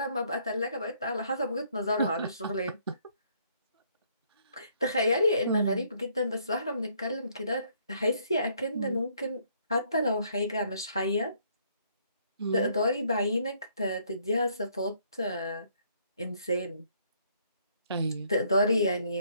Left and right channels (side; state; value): both; inverted; correlation -0.67